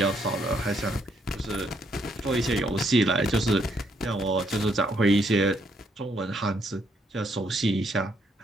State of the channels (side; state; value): both; normal; correlation 0.73